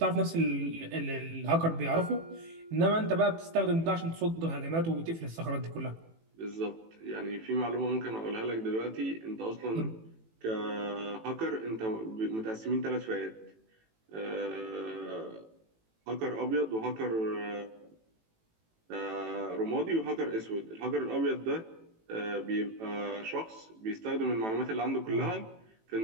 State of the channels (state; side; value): late; left; 18 ms